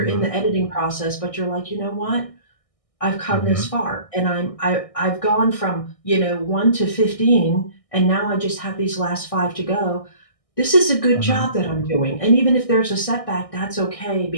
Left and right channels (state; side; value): late; right; 1.6 ms